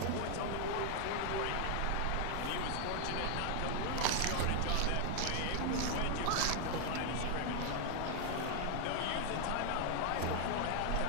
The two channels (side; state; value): both; different; correlation 0.00